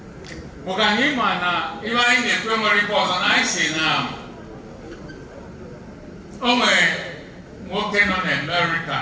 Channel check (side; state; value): both; identical; correlation 1.00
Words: bụ ka anyị ma na ibe anyị na-ekwe nwere ife ọzọ na anyị si na o nwere nwoke nọ na America